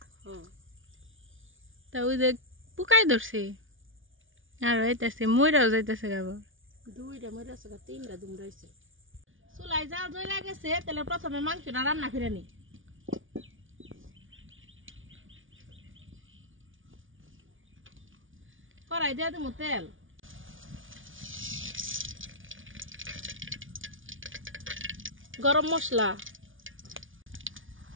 তা ওই যে পুকাই ধরছে আর হইতেছে ময়রাও যাইতেছে গাবো। দুইটা ময়রাছে, তিনটা দুমরাইছে। চুলাই জাল জ্বলে গেছে, তাহলে প্রথমে মাংসটা রান্না করে নি। কড়াই দিয়ে দেবো তেল, গরম মশলা,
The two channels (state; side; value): late; left; 0.57 ms